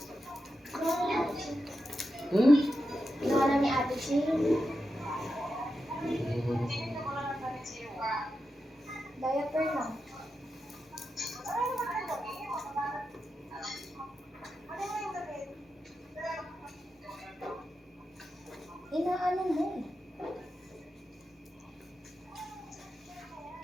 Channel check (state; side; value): normal; both; correlation 0.89